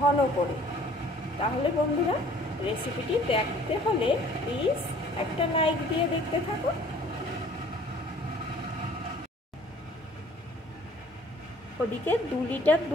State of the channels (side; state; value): both; normal; correlation 0.54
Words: করে। তাহলে বন্ধুরা, রেসিপিটি দেখতে হলে প্লিজ একটা লাইক দিয়ে দেখতে থাকুন। ওদিকে 2 লিটার